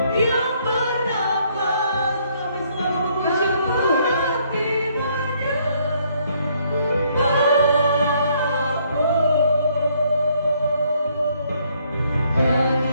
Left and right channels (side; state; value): both; inverted; correlation -0.68